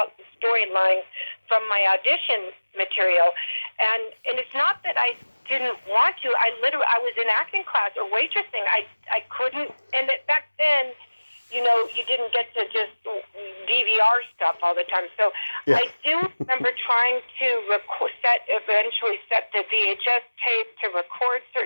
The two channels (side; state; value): both; inverted; correlation -1.00